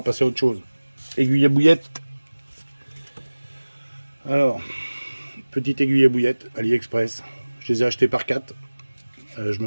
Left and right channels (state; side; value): inverted; both; correlation -1.00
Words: passer à autre chose. Aiguille à bouillette. Alors, petite aiguille à bouillette, AliExpress. Je les ai achetées par 4. Je me